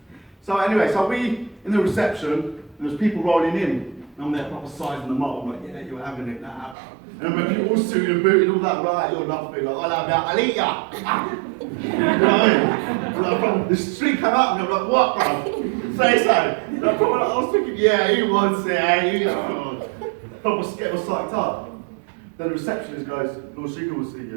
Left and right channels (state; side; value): drops out; left; at 6.8 s